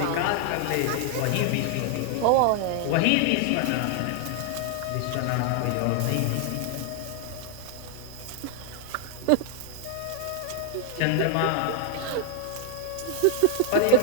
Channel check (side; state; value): both; different; correlation 0.00